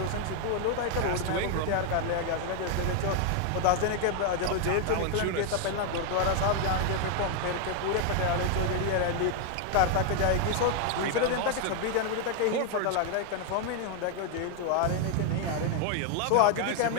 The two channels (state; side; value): different; both; correlation 0.01